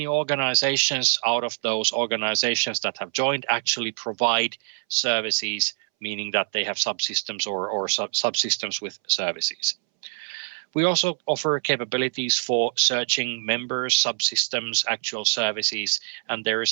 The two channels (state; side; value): silent; left; 62 dB below the other